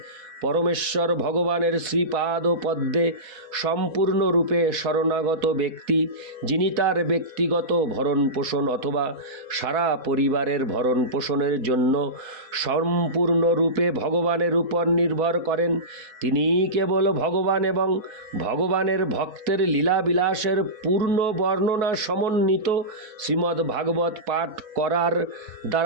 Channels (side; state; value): left; late; 4.6 ms